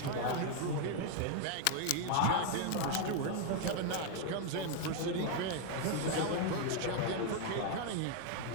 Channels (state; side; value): different; both; correlation 0.00